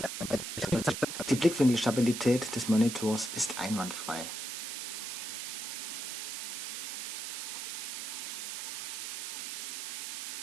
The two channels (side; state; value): right; noise; hiss, 4 dB below the sound